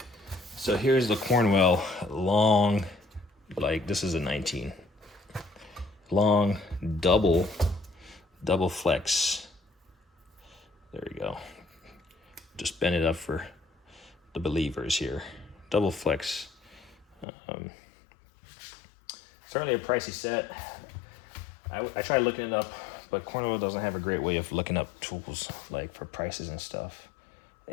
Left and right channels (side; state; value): right; drops out; at 17.2 s